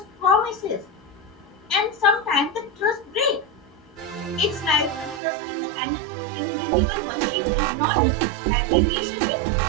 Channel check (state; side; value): drops out; left; at 5.2 s